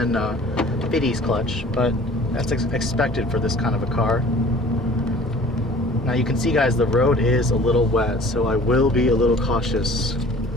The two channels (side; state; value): both; normal; correlation 0.48